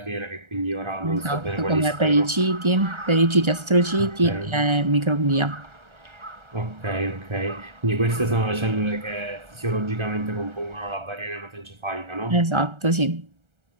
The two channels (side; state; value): left; late; 1.3 ms